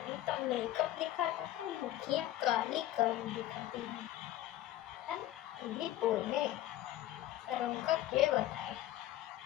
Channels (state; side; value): quieter; right; 14.2 dB